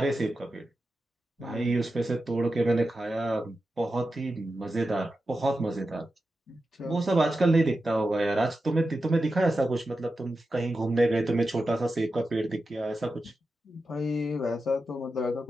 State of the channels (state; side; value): normal; both; correlation 0.91